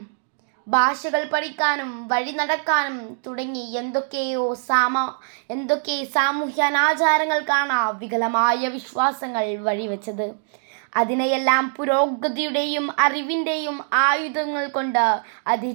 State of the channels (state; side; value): silent; left; 64 dB below the other